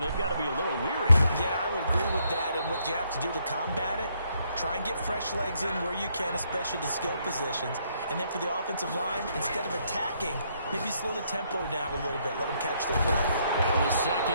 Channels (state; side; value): inverted; both; correlation -0.72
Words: got to be a little weary. Yeah, I would agree with that, and what you have to do to combat it, try and get fresh legs in where you can, especially the skill positions. And then for the offensive line, instead of attacking, maybe slow the tempo down a little bit. Let them catch their breath. Well, the